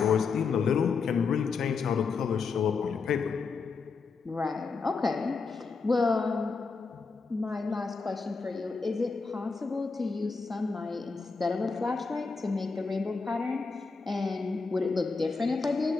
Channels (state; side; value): quieter; right; 4.7 dB